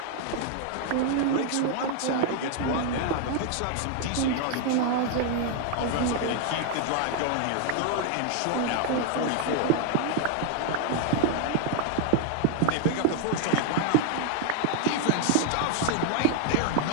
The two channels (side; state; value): both; different; correlation 0.00